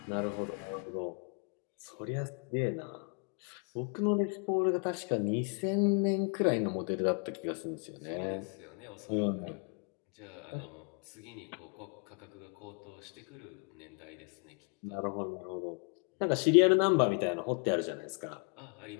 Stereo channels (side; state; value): right; quieter; 38.1 dB